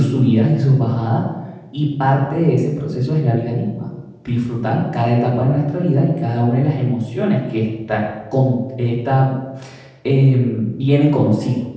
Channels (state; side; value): identical; both; correlation 1.00